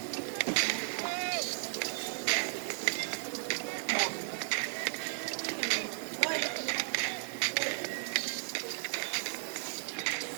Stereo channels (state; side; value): silent; left; digital silence